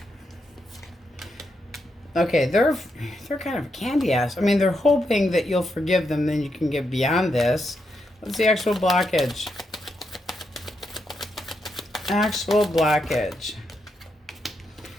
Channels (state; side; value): normal; both; correlation 0.82